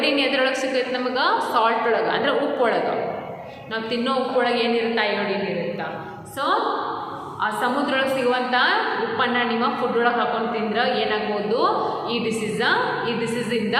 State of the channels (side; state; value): both; identical; correlation 1.00